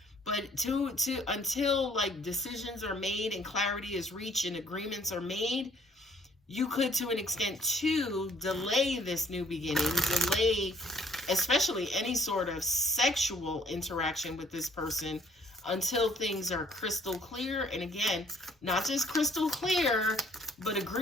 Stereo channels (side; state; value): both; normal; correlation 0.62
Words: But until like decisions are made and clarity is reached and agreements are made, you could to an extent too delay this new beginning, delay especially any sort of sexual interaction with this person until things are crystal clear. And again, not just crystal clear, but